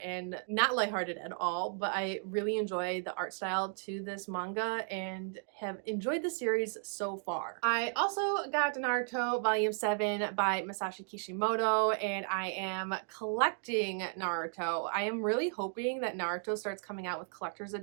and not lighthearted at all, but I really enjoy the art style to this manga and have enjoyed the series so far. I also got Naruto Volume 7 by Masashi Kishimoto, and I am collecting Naruto. I am really hoping that Naruto starts coming out with collector's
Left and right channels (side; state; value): left; silent; 55 dB below the other